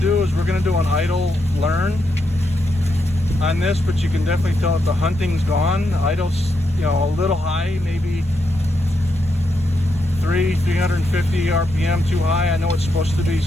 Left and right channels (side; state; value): both; normal; correlation 0.82